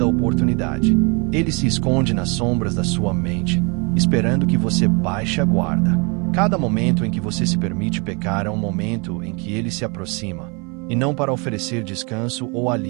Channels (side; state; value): left; quieter; 31.6 dB